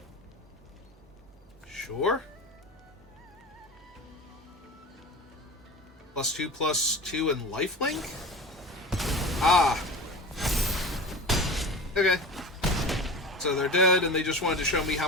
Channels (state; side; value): normal; both; correlation 0.32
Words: Sure. +2/+2 and lifelink? Ah. Okay. So they're dead, and they just wanted to show me